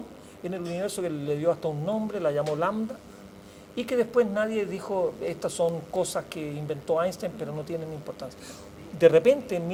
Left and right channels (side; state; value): both; identical; correlation 1.00